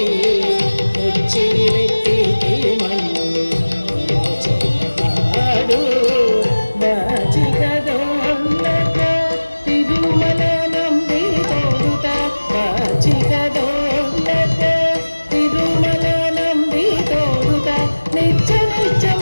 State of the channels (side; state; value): both; inverted; correlation -1.00